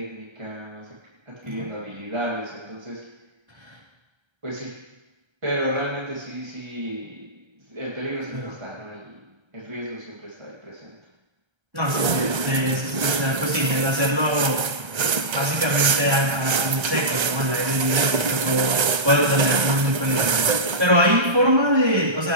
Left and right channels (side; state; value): left; late; 1.3 ms